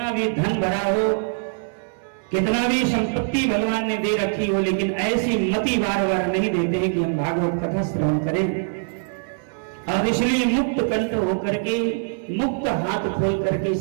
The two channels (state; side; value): silent; left; 63 dB below the other